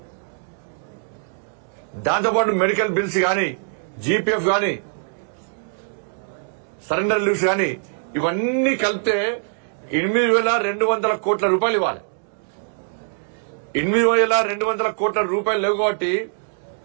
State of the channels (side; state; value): left; silent; digital silence